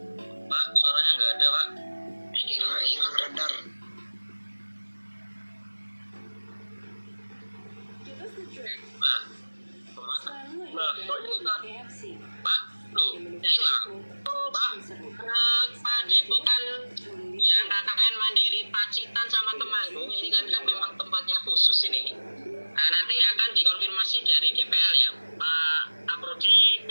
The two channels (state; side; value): inverted; both; correlation -1.00